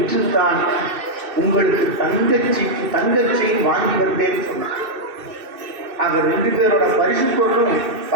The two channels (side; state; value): left; late; 2.6 ms